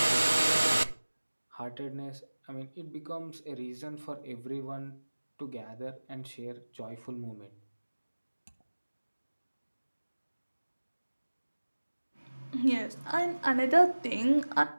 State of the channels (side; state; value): both; inverted; correlation -1.00